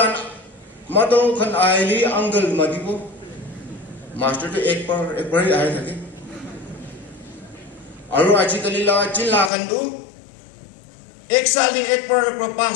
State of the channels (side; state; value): right; drops out; at 9.5 s